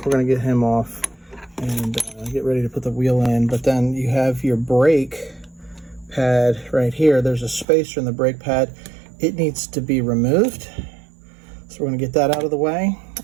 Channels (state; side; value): drops out; left; at 7.7 s